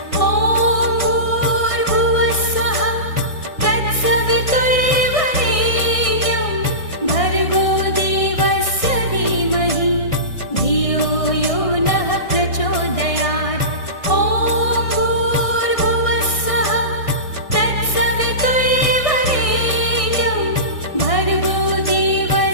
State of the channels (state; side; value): late; right; 1.6 ms